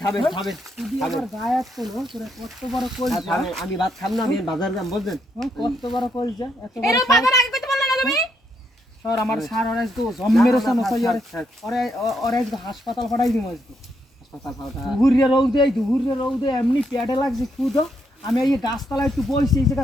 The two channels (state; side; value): normal; both; correlation 0.76